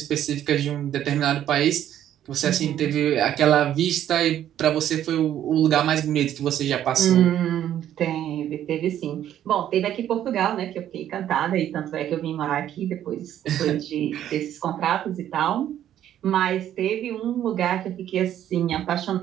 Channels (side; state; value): left; quieter; 11.2 dB